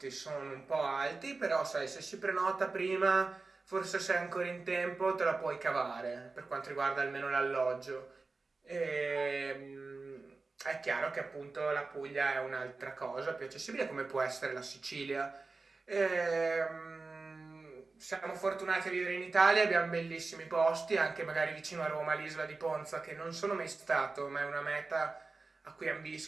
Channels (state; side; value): quieter; left; 3.8 dB